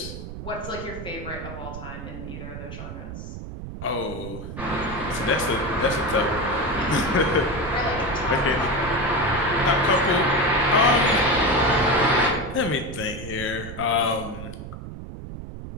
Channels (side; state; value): right; noise; rumble, 10 dB below the sound